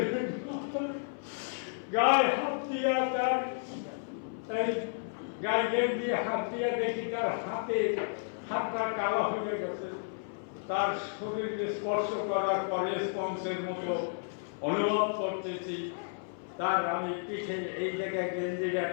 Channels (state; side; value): silent; right; 56 dB below the other